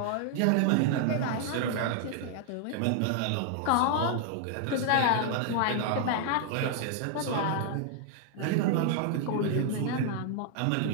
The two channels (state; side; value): different; both; correlation 0.00